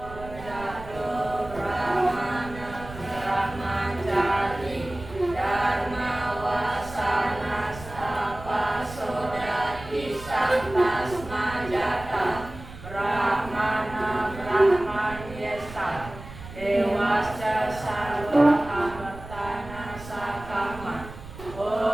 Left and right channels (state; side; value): noise; right; rumble, 14 dB below the sound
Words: Dewasya sarwa amartana sakama.